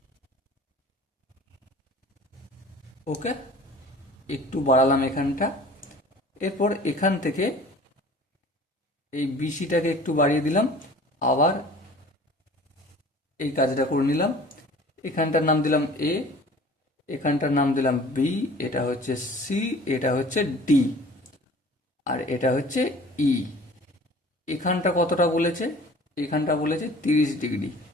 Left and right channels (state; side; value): normal; both; correlation 0.46